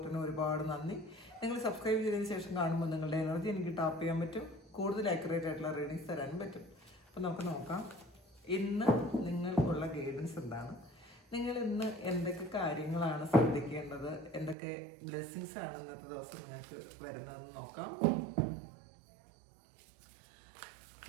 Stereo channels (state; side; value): drops out; left; at 14.6 s